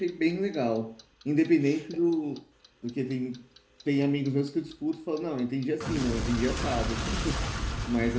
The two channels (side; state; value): both; identical; correlation 1.00